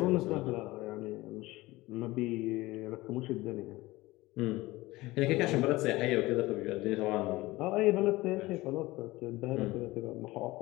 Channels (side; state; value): right; quieter; 19.6 dB